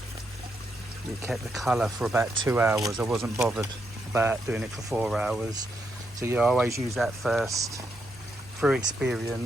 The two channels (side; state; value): both; normal; correlation 0.80